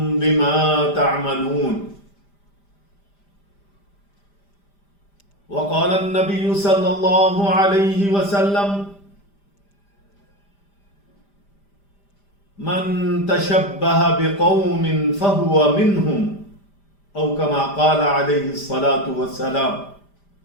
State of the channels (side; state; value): right; late; 5.0 ms